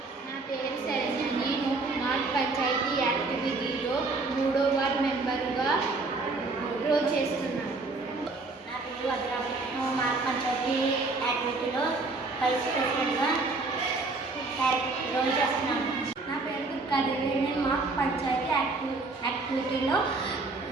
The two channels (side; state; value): left; quieter; 3.6 dB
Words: నా పేరు శరణ్య. నేను మా పంచాయతీ యాక్టివిటీలో 3వ వార్డ్ మెంబర్గా రోల్ చేస్తున్నాను. నా పేరు వజ్ర. నేను మా పంచాయతీ యాక్టివిటీలో వైస్ ప్రెసిడెంట్గా రోల్ చేస్తున్నాను. నా పేరు దుర్గాదేవి. నేను మా పంచాయతీ యాక్టివిటీలో